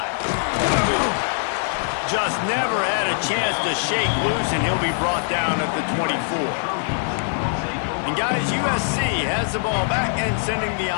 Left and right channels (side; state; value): right; silent; 63 dB below the other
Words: Just never had a chance to shake loose, and he'll be brought down at the 24. And And guys, USC has the ball back and sending the